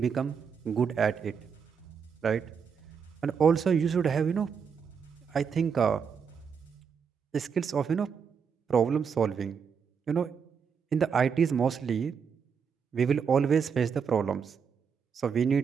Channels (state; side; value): quieter; left; 6.5 dB